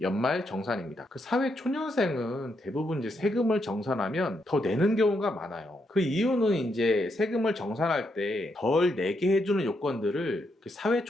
사회 초년생은 대부분 이제 세금을 정산하면 더 내는 경우가 많아요. 그 이유는 이제 세금을 정산할 때 덜 내게 해주는 요건들을 사회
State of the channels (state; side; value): normal; both; correlation 0.79